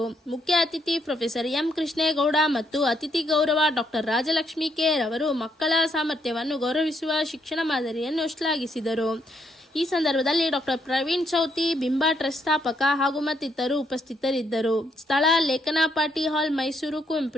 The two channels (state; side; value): normal; both; correlation 0.74